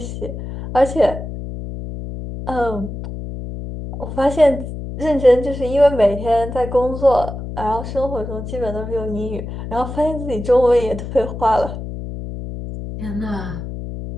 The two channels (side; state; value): left; noise; hum, 8 dB below the sound